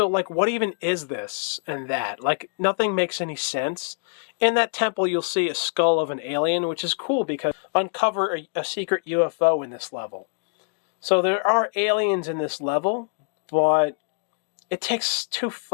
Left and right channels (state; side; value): quieter; right; 39.5 dB